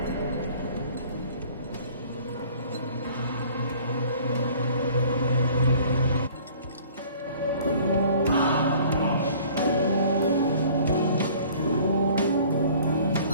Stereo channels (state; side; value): inverted; both; correlation -0.51